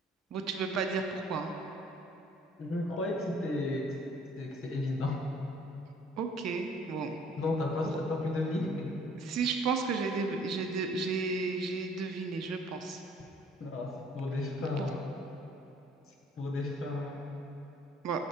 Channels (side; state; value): both; normal; correlation 0.57